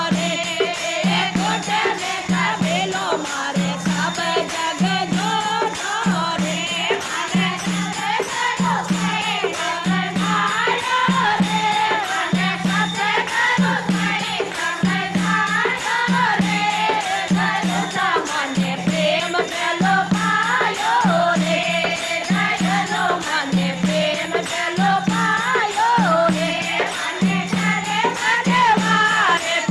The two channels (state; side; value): identical; both; correlation 1.00